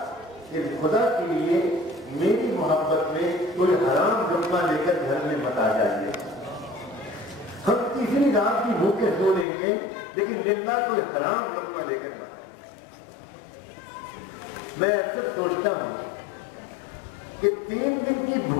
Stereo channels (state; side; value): drops out; right; at 9.5 s